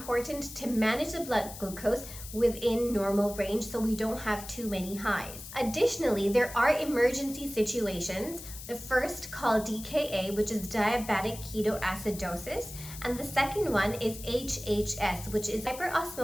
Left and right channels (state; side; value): noise; left; hiss, 13 dB below the sound